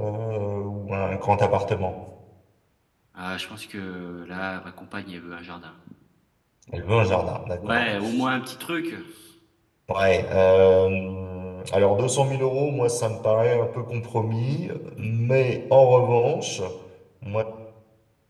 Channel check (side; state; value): both; identical; correlation 1.00